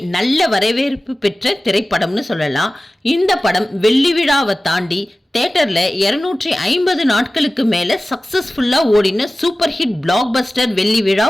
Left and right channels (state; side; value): normal; both; correlation 0.96